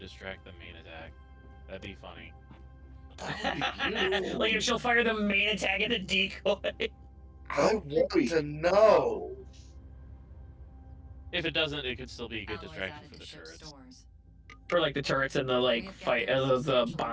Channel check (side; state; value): both; identical; correlation 1.00